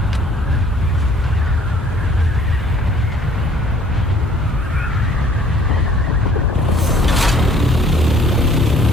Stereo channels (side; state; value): both; normal; correlation 0.58